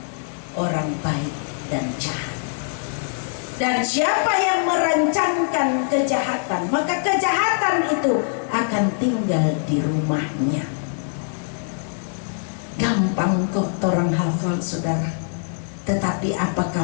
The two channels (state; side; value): silent; right; 63 dB below the other